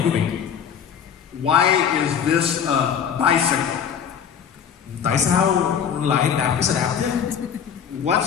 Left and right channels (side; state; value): right; quieter; 7.8 dB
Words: quý vị. Why is this a bicycle? Tại sao lại đạp cái xe đạp chứ?